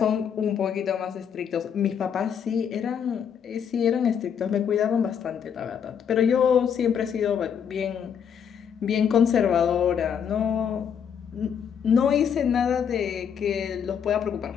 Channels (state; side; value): quieter; right; 7.8 dB